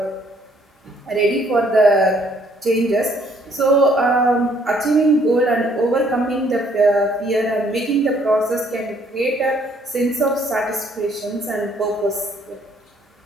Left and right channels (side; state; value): both; normal; correlation 0.64